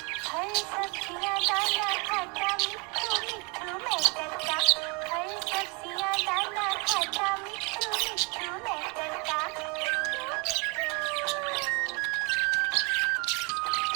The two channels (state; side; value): quieter; left; 31.5 dB